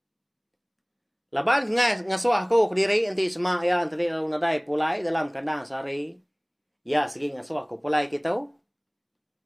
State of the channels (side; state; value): both; identical; correlation 1.00